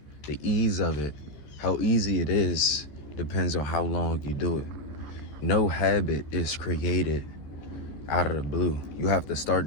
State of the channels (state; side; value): late; right; 14 ms